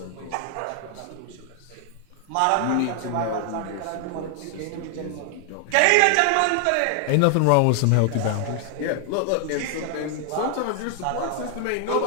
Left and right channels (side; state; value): both; different; correlation 0.00